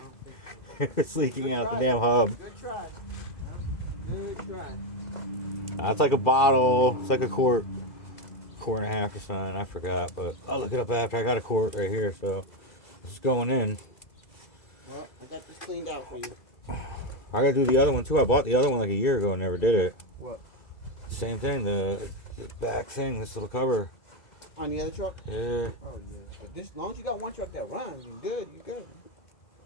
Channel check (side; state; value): right; late; 2.0 ms